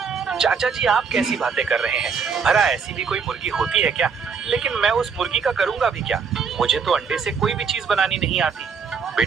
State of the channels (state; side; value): quieter; left; 5.8 dB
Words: चाचा जी, आप कैसी बातें कर रहे हैं? भला ऐसी भी कोई मुर्गी होती है क्या? लेकिन मैं उस मुर्गी का करूंगा भी क्या? मुझे तो अंडे से कोई भी चीज बनानी नहीं आती।